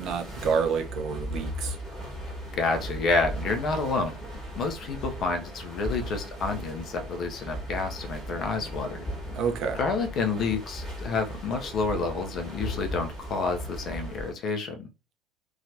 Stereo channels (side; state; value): both; normal; correlation 0.54